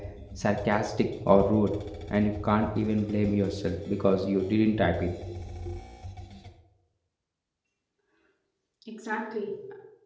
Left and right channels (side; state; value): both; identical; correlation 1.00